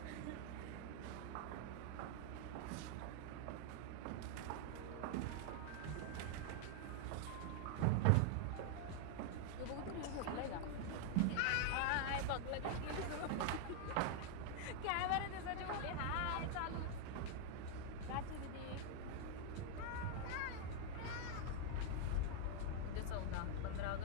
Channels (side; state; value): both; different; correlation 0.00